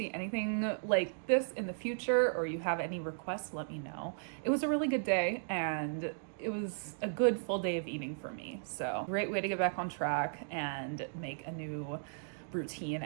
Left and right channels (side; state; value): left; silent; digital silence